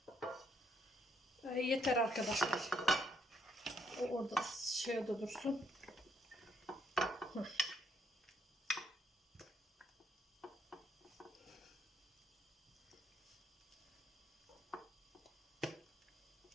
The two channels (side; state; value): both; normal; correlation 0.72